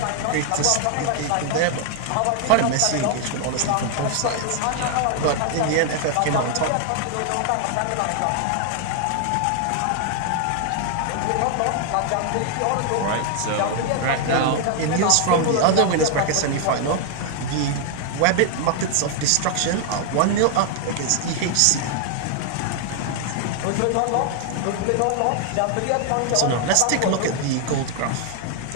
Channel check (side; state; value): both; different; correlation 0.00